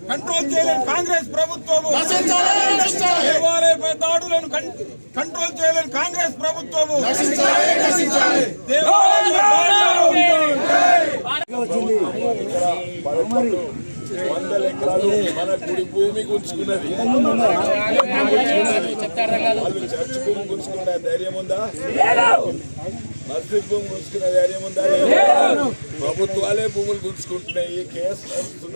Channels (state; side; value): inverted; both; correlation -1.00